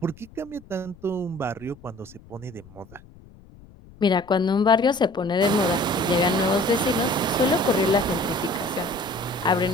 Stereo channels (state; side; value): noise; left; rumble, 23 dB below the sound